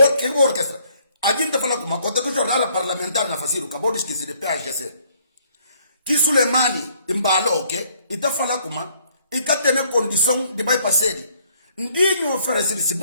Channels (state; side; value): inverted; both; correlation -0.65